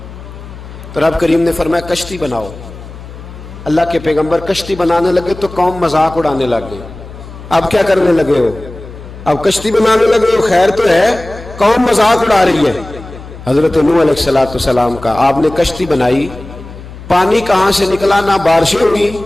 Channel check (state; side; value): noise; left; hum, 15 dB below the sound